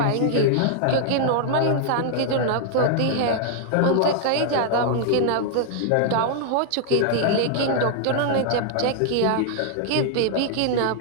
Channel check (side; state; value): both; different; correlation -0.01